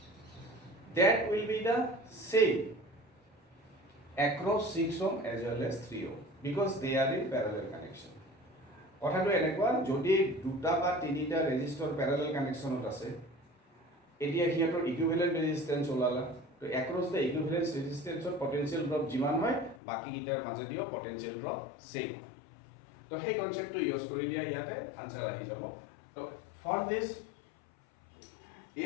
that will be the same across 6 ohm as well as 3 ohm because they are in parallel connection. কথাটো এনেকুৱা যদি দুটা বা তিনিটা resistor Pyarelal কানেকশনত আছে এতিয়া হিয়াতৰ ইকুইভ্যালেন্ট ৰেজিস্ট্যান্স ওলালা তো অ্যাক্রস দ্য ইকুইভ্যালেন্ট ৰেজিস্ট্যান্সৰ পটেনশিয়াল ড্ৰপ যিমান হয় বাকি গিটাৰ মাজেদিও পটেনশিয়াল ড্ৰপ সেম তো সেই কনসেপ্টটো ইউজ কৰি দিয়া ইয়াতে আনসাৰ আহি যাব তো for this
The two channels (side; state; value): right; drops out; at 19.8 s